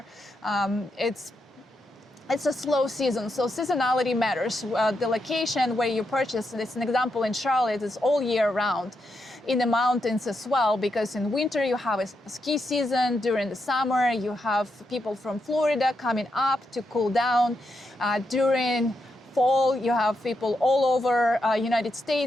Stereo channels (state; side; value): normal; both; correlation 0.83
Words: it's a slow season, so seasonality matters. The location where you purchase, it's an example in Charlotte, is all year round. In the mountains as well, because in winter you have a ski season. During the summer, you have people from Florida coming up to cool down. During fall, you have people all over United